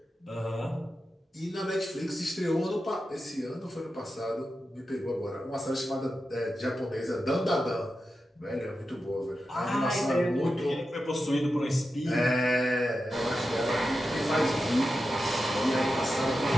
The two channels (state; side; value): normal; both; correlation 0.91